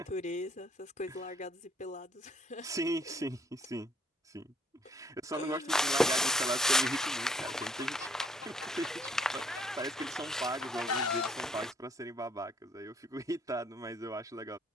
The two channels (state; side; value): normal; both; correlation 0.65